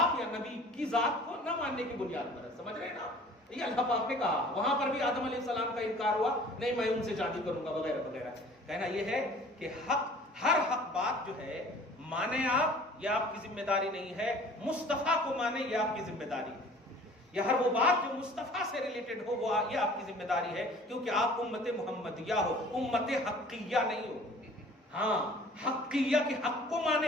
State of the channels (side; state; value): both; normal; correlation 0.49